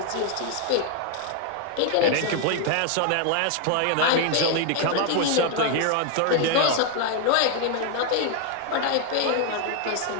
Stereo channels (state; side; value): different; both; correlation 0.01